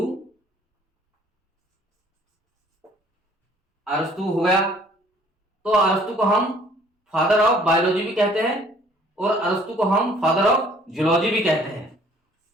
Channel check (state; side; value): normal; both; correlation 0.57